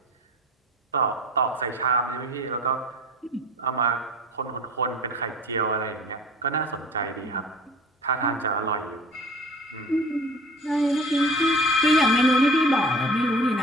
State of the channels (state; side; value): normal; both; correlation 0.41